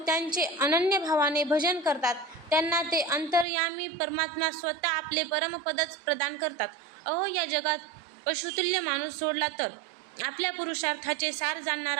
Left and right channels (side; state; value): left; drops out; at 3.5 s